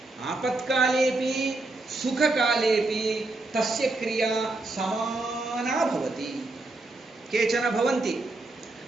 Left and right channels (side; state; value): left; quieter; 3.1 dB